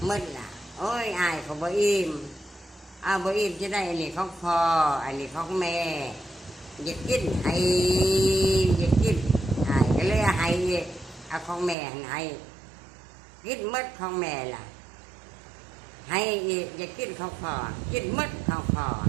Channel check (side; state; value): left; drops out; at 11.8 s